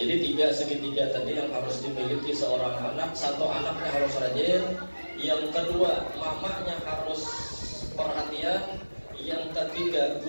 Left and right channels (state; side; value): inverted; both; correlation -1.00